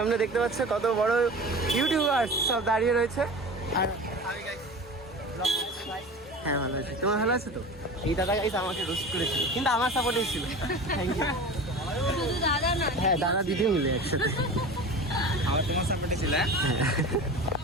দেখতে পাচ্ছ কত বড় ইউটিউবার সব দাঁড়িয়ে রয়েছে। আর হ্যাঁ ভালো আছে, তোমার ভালো আছে তো? এই দাদা গাইস আমাকে রোস্ট করেছিল কিন্তু আমার সাপোর্টে ছিল। Thank you. শুধু দাদা না, হ্যাঁ দাদা দিদি মিলে একসাথে। আমার তোমার সাপোর্টে ছিল।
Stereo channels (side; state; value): both; normal; correlation 0.34